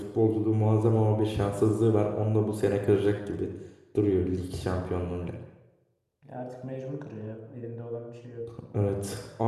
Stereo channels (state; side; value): identical; both; correlation 1.00